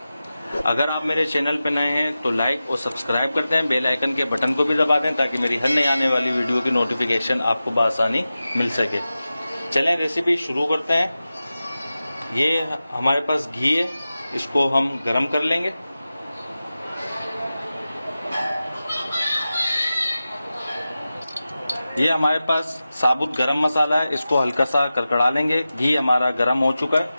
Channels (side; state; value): both; inverted; correlation -0.94